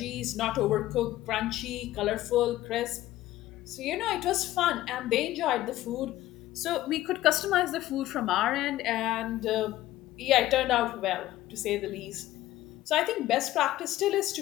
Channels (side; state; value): right; quieter; 15.2 dB